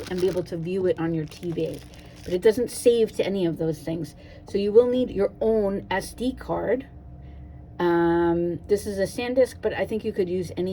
and be able to view it on your TV. But it doesn't save to any of those things. So you will need your own SD card. This is a SanDisk, but I think you could use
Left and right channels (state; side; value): identical; both; correlation 1.00